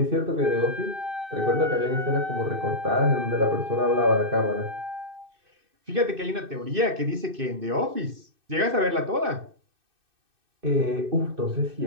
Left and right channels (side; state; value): left; late; 2.6 ms